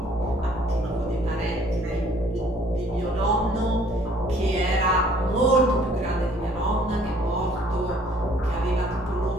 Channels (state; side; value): normal; both; correlation 0.58